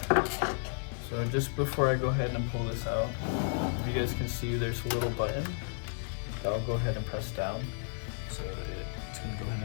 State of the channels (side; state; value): right; silent; digital silence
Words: So just before I go ahead and pull this out, if you guys can see, there's a little button that I'll go ahead and press down. So it's gonna go